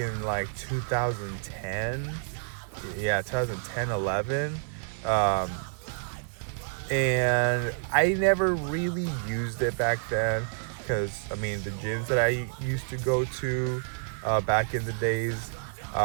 like 2010, 11. And I never really used it back then, because the gyms that I used to go to back in the days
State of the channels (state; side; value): silent; left; digital silence